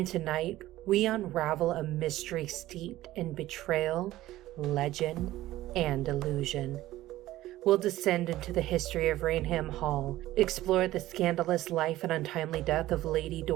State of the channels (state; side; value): quieter; left; 15.7 dB